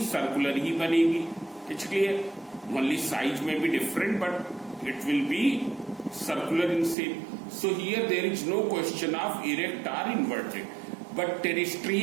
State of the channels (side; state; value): left; drops out; at 7.0 s